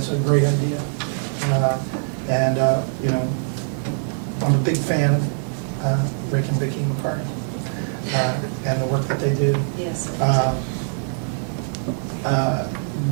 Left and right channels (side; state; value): left; silent; digital silence